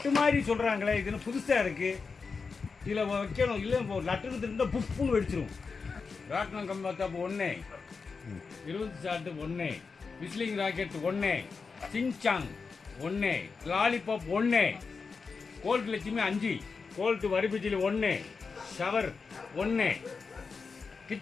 மாதிரி சொல்கிறாங்களே, இதுன்னு புதுசாக இருக்குது. இதில் வைக்கணும், இல்லை இப்போ லட்டுன்னு இருந்தால் புப்புன்னு வெடிச்சிரும். ராட்னம் கம்பாத்தாப்பு 1, 20 shot 1, whistling rocket 1, singsong 1, lollipop 1, gold Lakshmi 5, gold வரிபிஜிலி 1, ஷவர் 1,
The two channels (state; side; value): quieter; right; 4.9 dB